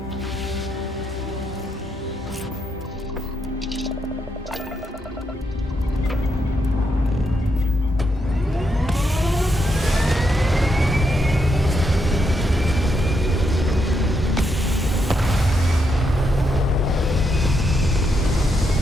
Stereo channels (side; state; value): both; normal; correlation 0.80